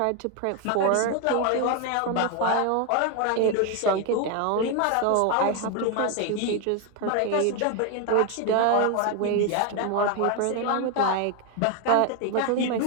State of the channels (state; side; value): different; both; correlation 0.01